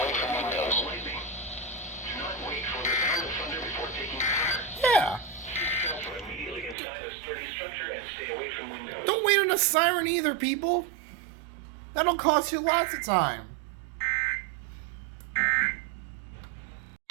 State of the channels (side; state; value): left; drops out; at 6.8 s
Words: from windows. Do not wait for the sound of thunder before taking cover. Yeah. Shelter immediately inside a sturdy structure and stay away from windows. Don't wait on a siren either, people. That'll cost you lots of time.